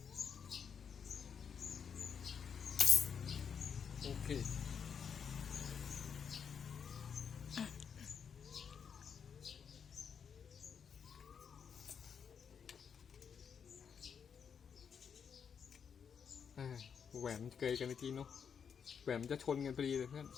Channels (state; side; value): quieter; right; 7.0 dB